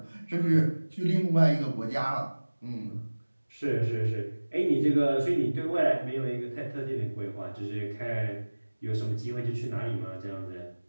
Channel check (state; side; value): inverted; both; correlation -1.00